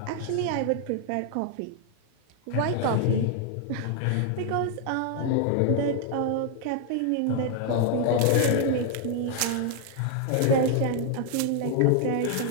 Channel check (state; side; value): different; both; correlation 0.00